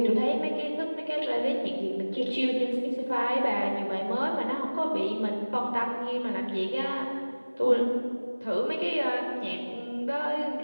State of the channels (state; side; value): inverted; both; correlation -1.00